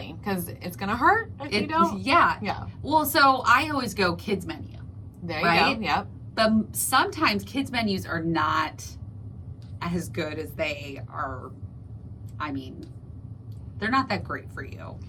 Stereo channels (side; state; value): both; identical; correlation 1.00